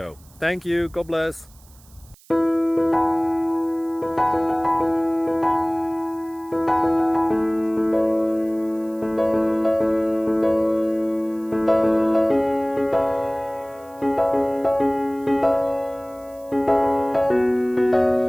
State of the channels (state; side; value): noise; right; hiss, 27 dB below the sound